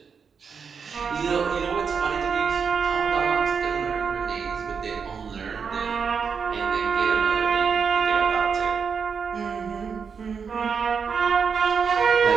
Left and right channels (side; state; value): left; quieter; 6.1 dB